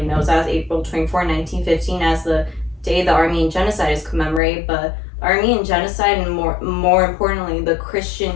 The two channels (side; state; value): right; drops out; at 4.4 s